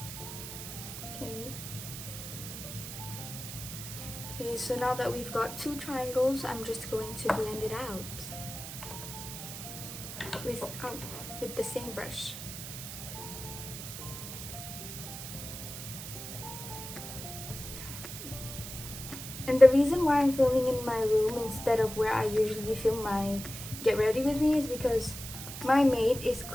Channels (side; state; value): right; noise; hiss, 9 dB below the sound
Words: Okay. Okay, so now that we've got 2 triangles, I'm just going to blend it out with the same brush. And the reason why I'm filming in my room instead of where I usually film my get ready with me is because my maid is